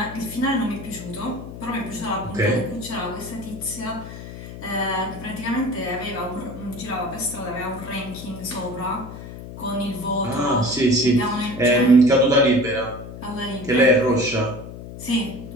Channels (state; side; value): noise; left; hum, 12 dB below the sound